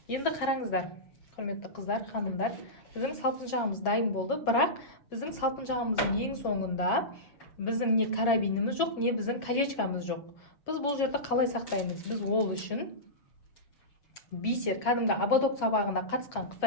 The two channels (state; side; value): late; right; 7.1 ms